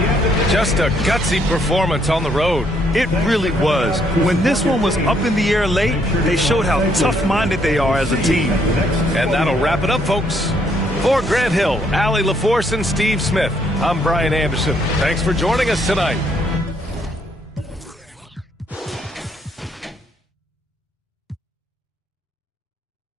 Just a gutsy performance on the road. It really was. When this one was up in the air late, they showed how tough-minded they are as a team. And that'll wrap it up, folks. For Grant Hill, Allie LaForce, and Steve Smith, I'm Brian Anderson. Thanks for joining us tonight.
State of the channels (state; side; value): normal; both; correlation 0.70